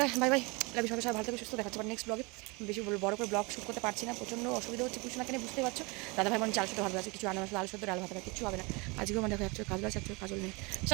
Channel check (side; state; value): left; quieter; 27.7 dB